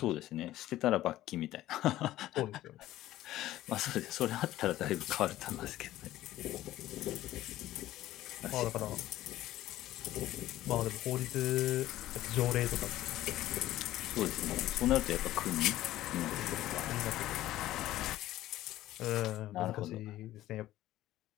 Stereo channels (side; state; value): right; quieter; 14.8 dB